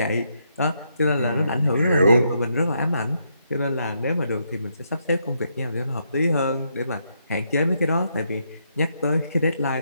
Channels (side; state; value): both; inverted; correlation -0.78